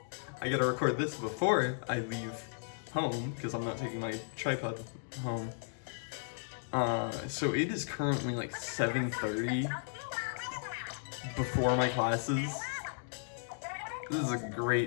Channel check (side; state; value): right; silent; digital silence